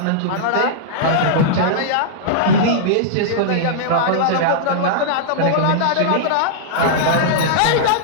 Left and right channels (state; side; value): different; both; correlation -0.02